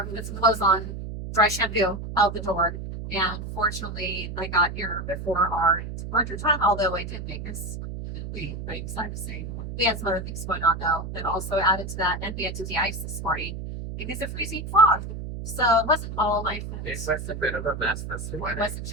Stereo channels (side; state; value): right; noise; hum, 7 dB below the sound